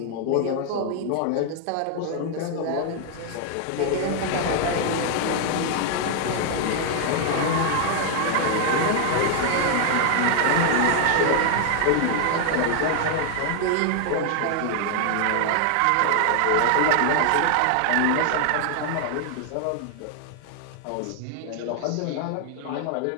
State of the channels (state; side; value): different; both; correlation 0.00